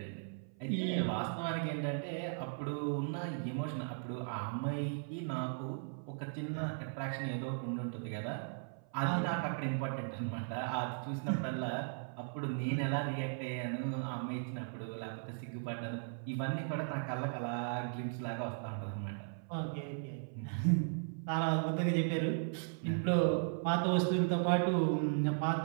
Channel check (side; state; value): left; silent; 53 dB below the other